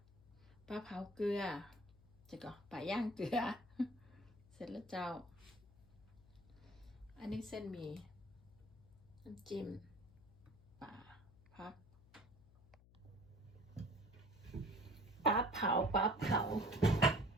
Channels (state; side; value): noise; left; hum, 24 dB below the sound